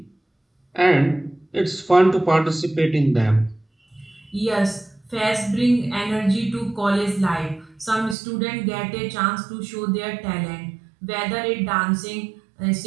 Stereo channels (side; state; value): left; drops out; at 8.2 s